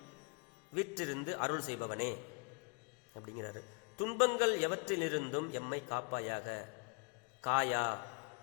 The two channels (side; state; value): right; quieter; 35.5 dB